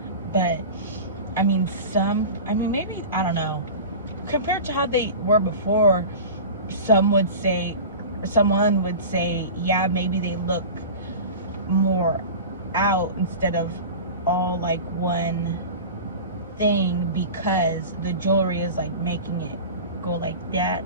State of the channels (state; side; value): inverted; both; correlation -0.33